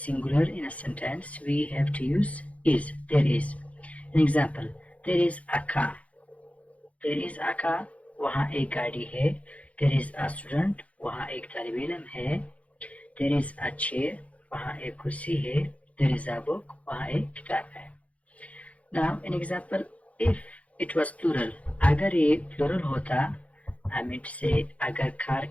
in a sentence, we have to use is. There is. An example, there is a car. There is a car. वहाँ एक गाड़ी है. There is a student. वहाँ एक तालिब इल्म है. There is a chair. वहाँ एक कुर्सी है. There is a book. वहाँ एक किताब है. Now an example, if it was plural, अगर ये plural होता, I mean to say अगर car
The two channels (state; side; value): late; right; 0.066 ms